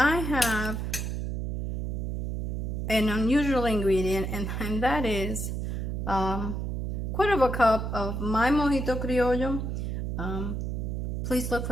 have an unusual ingredient, and that is quarter of a cup of my mojito criollo. Please look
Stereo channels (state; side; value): noise; right; hum, 2 dB below the sound